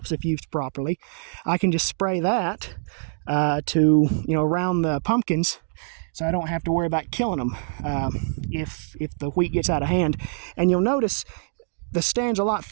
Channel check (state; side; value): silent; left; digital silence